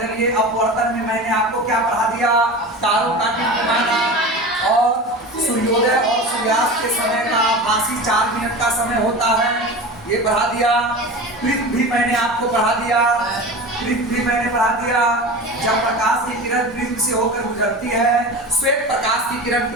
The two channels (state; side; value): normal; both; correlation 0.31